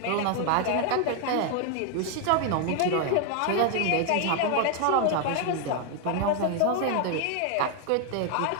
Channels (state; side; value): different; both; correlation 0.01